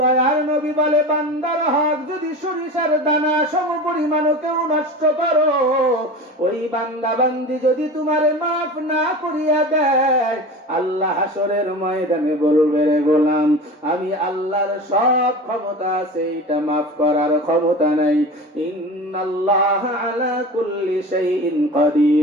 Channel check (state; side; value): normal; both; correlation 0.32